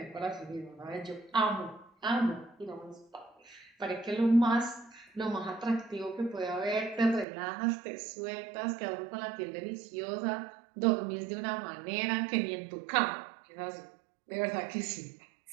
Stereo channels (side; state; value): left; drops out; at 7.2 s